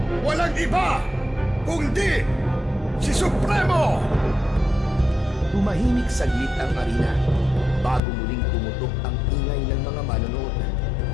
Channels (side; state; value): right; drops out; at 8.0 s